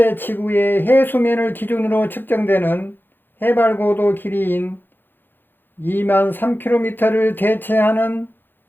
지구의 해수면을 기준으로 측정되는 해발고도 길이인 2만 3km를 대체하는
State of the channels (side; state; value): right; late; 0.096 ms